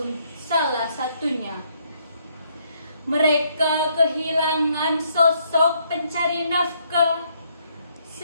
salah satunya. Mereka kehilangan sosok pencari nafkah,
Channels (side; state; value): both; inverted; correlation -0.70